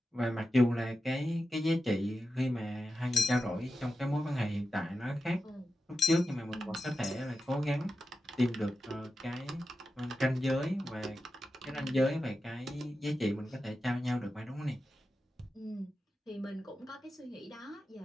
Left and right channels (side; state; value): both; normal; correlation 0.91